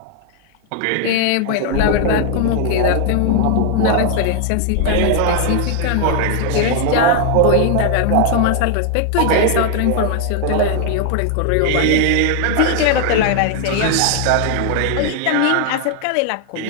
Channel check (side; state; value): both; different; correlation 0.00